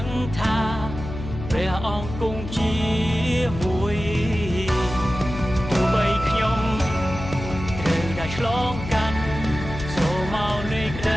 ងថាព្រះអង្គគង់ជាមួយទោះបីខ្ញុំត្រូវតែឆ្លងកាត់ស្រមោលនៃក្ត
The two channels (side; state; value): left; noise; hum, 9 dB below the sound